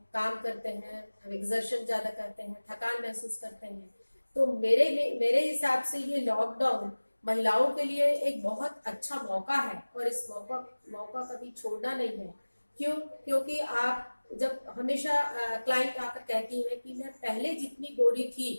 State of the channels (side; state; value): both; inverted; correlation -1.00